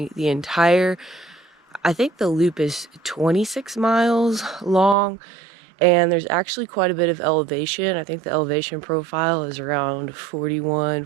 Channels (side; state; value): left; drops out; at 5.0 s